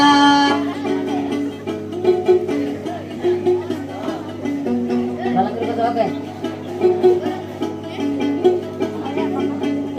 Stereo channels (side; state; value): both; identical; correlation 1.00